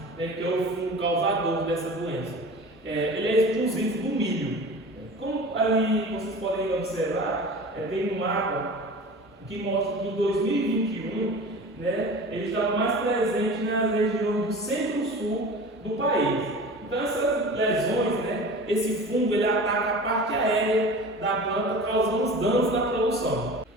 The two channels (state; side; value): normal; both; correlation 0.37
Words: que é o fungo causador dessa doença. Ele é exclusivo do milho. Como ali vocês podem observar, tem um mapa que mostra que em 2021 ele está mais presente nas regiões do centro-sul do país. Então essas lesões, esse fungo ele ataca a parte aérea da planta, causando os danos na produção.